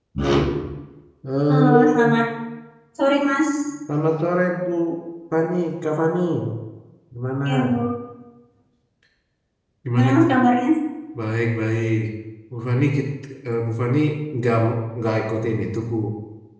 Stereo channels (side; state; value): both; identical; correlation 1.00